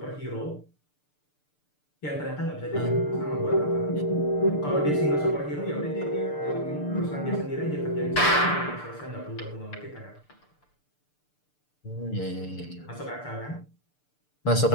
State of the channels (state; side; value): late; right; 6.8 ms